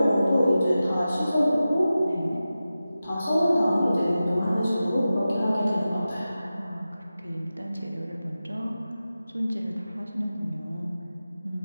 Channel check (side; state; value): both; inverted; correlation -0.94